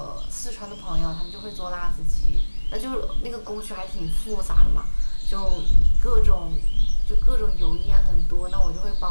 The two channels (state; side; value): inverted; both; correlation -1.00